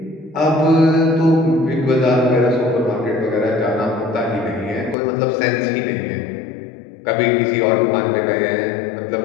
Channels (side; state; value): right; drops out; at 5.0 s